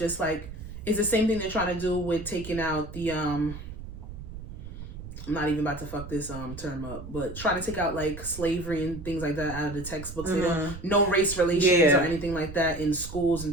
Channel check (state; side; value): noise; right; rumble, 11 dB below the sound